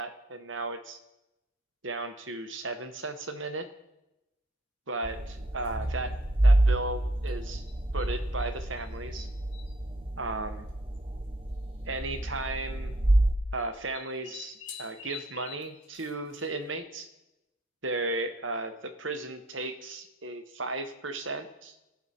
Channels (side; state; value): both; normal; correlation 0.64